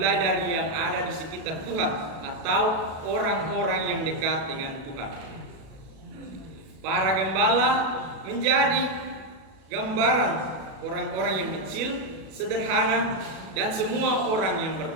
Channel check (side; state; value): left; late; 37 ms